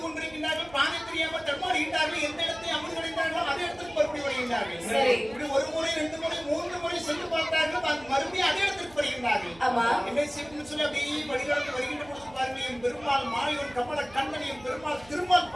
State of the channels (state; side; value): noise; right; hum, 23 dB below the sound